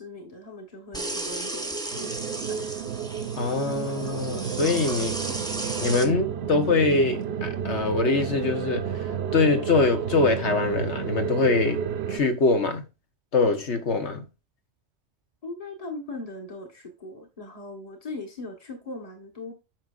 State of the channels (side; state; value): both; normal; correlation -0.09